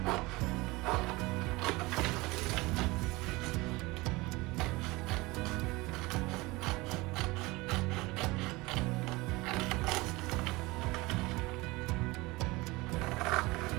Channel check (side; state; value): left; quieter; 22.2 dB